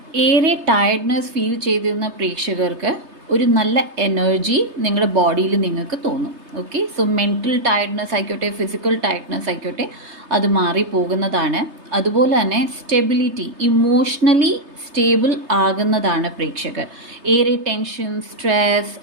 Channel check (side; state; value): left; late; 3.3 ms